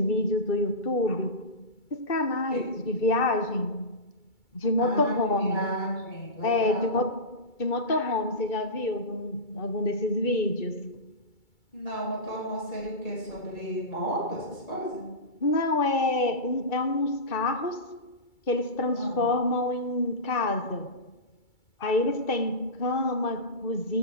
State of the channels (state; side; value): late; right; 2.3 ms